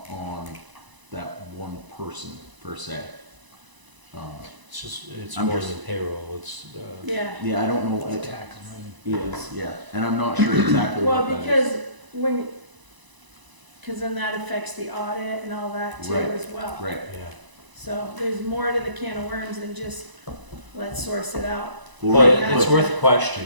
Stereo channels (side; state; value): left; late; 1.0 ms